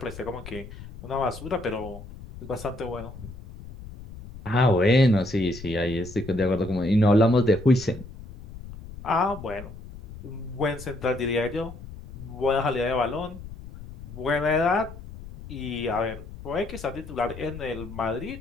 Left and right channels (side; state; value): left; noise; rumble, 14 dB below the sound